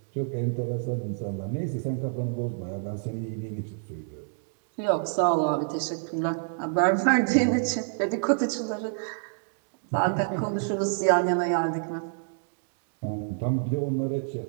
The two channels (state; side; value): silent; left; digital silence